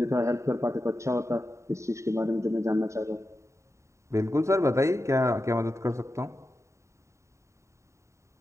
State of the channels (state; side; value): late; left; 0.14 ms